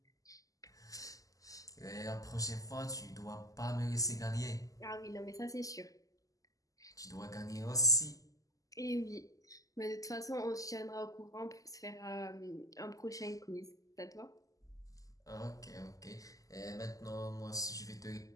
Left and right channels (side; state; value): right; late; 0.17 ms